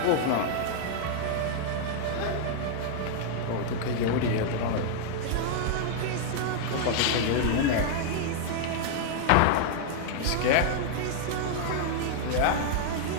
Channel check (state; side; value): different; both; correlation -0.01